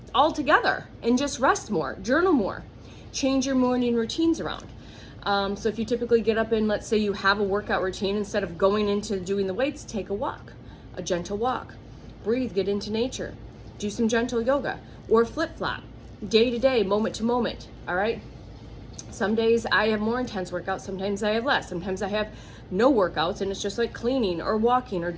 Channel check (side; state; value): both; identical; correlation 1.00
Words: altogether and just rest more, journal more, change your morning routines around. So if you typically get up and let's say you have a workout routine, instead of going into doing the weights, take a walk, a gentle walk, breathe, get into nature, do some gentle yoga or flip-flop, day to day, moment to moment, all right? Some days I have more intense workouts, sometimes I have less, sometimes I have no workouts and it's just like cleaning or walking or